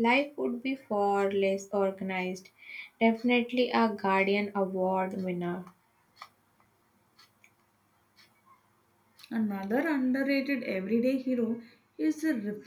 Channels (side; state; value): both; identical; correlation 1.00